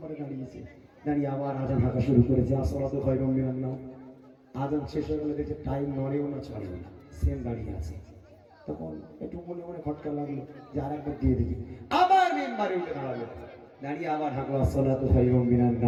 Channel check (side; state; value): both; identical; correlation 1.00